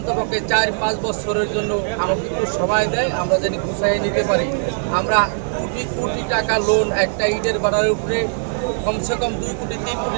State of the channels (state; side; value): silent; left; digital silence